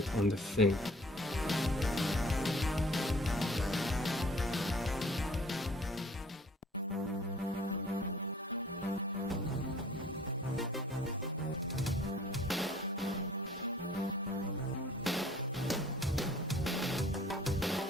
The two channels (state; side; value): normal; both; correlation 0.54